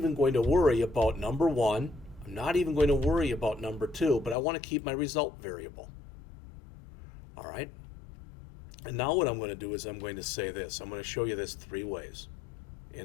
going to worry about number 1. I'm not even going to worry about number 2, but I want to keep my result variable. All right. And now what I'm going to do is I'm going to say this. I'm going to show you this 3 ways.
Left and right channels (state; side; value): drops out; right; at 4.4 s